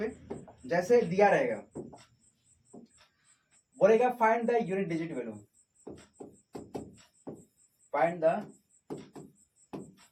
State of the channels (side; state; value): both; identical; correlation 1.00